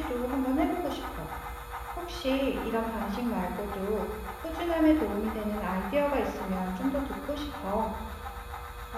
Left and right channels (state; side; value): identical; both; correlation 1.00